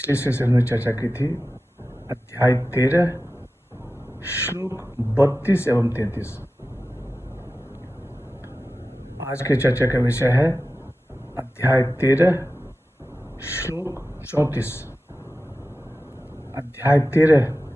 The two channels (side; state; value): both; normal; correlation 0.94